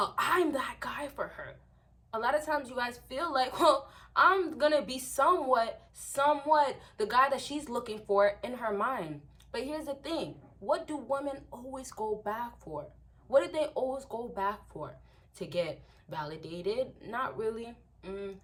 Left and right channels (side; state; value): both; identical; correlation 1.00